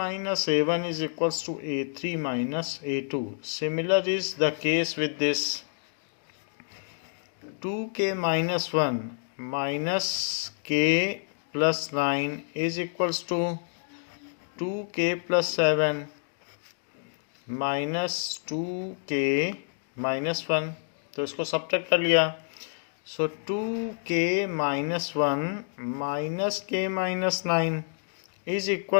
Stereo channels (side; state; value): right; silent; digital silence